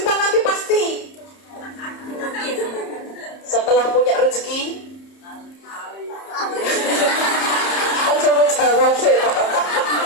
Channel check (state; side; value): late; right; 30 ms